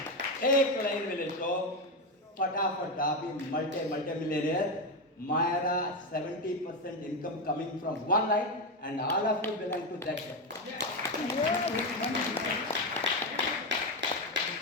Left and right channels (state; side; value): normal; both; correlation 0.11